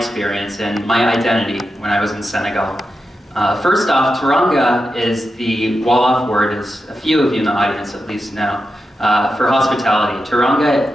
and my identity when I was in Senegal. First off, Turanga is the Wolof word, as a few of you in the audience at least know, for hospitality. Turanga,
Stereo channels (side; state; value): both; normal; correlation 0.89